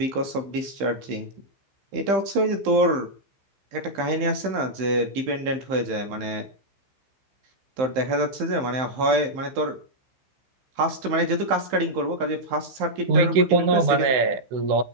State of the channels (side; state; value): left; late; 15 ms